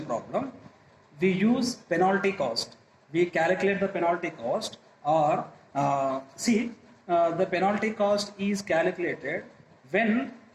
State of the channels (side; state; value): both; identical; correlation 1.00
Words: problem, we use penalty cost. We calculate the penalty cost or the penalty cost is calculated when